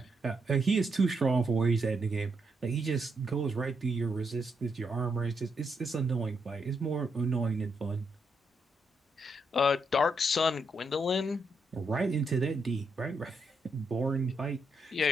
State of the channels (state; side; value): normal; both; correlation 0.79